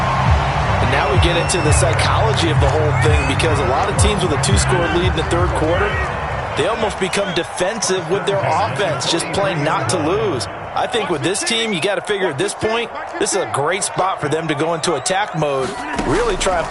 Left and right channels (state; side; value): identical; both; correlation 1.00